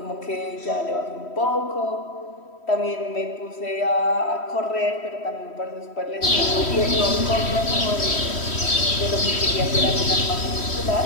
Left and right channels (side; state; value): right; late; 3.1 ms